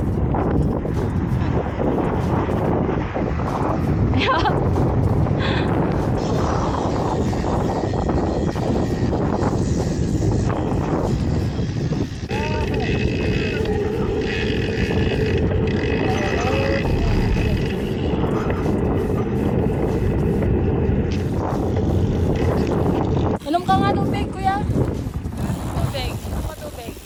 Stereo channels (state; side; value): identical; both; correlation 1.00